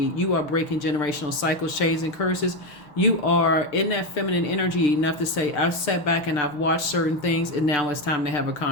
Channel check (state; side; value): late; right; 6.7 ms